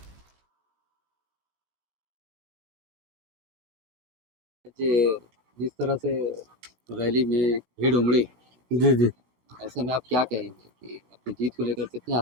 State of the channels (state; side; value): late; left; 16 ms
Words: जिस तरह से रैली में भीड़ उमड़ी, जी जी, ऐसे में आप क्या कहेंगे कि अपनी जीत को लेकर कितने